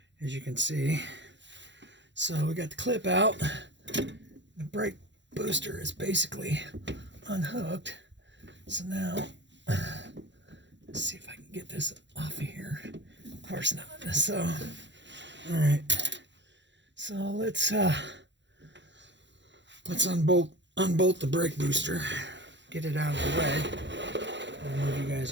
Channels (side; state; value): left; late; 0.52 ms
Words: as you can see. So we got the clip out. The brake booster is basically unhooked. So now, let's see if I can get this off of here. Of course not. So, all right. So let's unbolt the brake booster. Get it out of the way. I'll move you guys